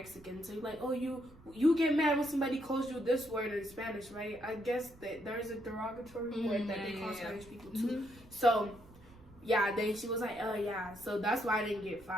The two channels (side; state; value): right; noise; rumble, 23 dB below the sound